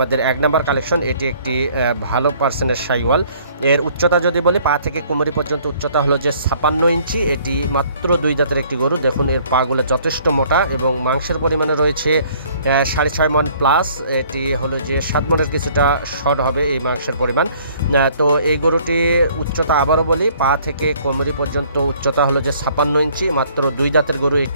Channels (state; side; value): inverted; both; correlation -0.58